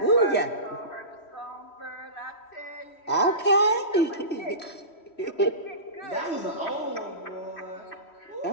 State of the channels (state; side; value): late; right; 3.1 ms